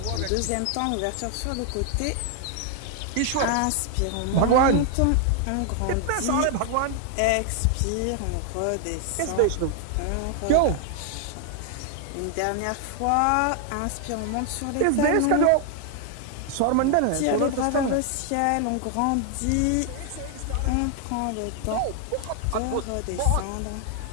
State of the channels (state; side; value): different; both; correlation 0.00